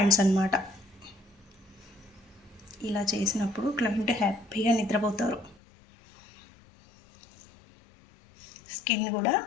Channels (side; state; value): right; drops out; at 5.6 s